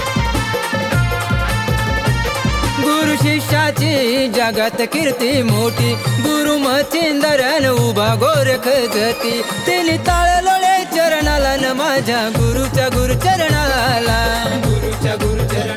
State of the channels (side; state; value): both; identical; correlation 1.00